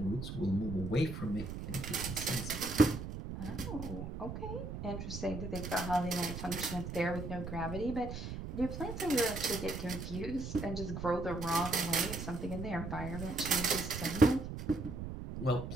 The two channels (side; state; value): right; noise; rumble, 6 dB below the sound